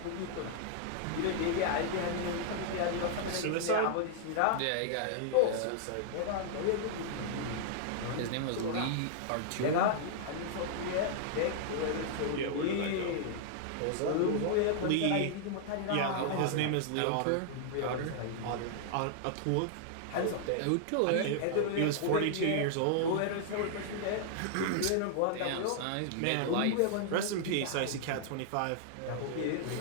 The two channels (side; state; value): both; different; correlation -0.01